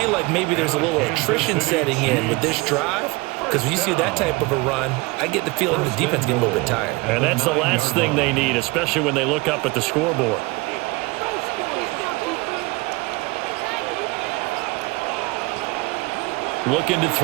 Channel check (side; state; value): left; quieter; 24.4 dB